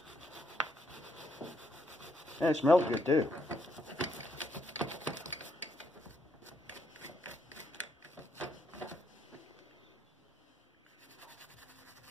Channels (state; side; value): normal; both; correlation 0.74